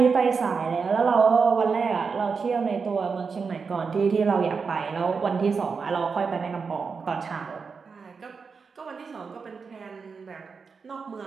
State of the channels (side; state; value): left; quieter; 5.3 dB